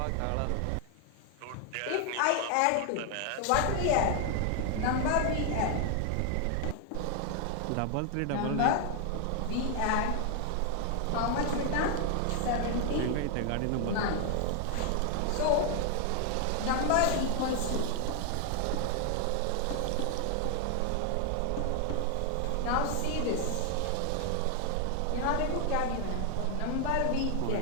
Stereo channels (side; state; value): both; different; correlation 0.00